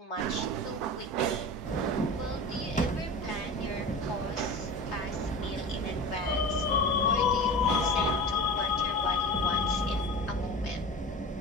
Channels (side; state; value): both; normal; correlation 0.33